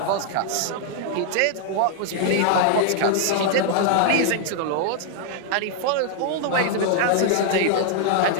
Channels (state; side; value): different; both; correlation 0.00